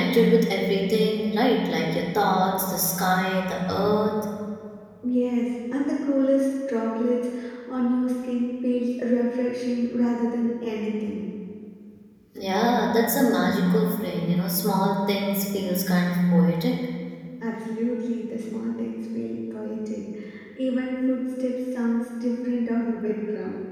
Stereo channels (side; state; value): both; identical; correlation 1.00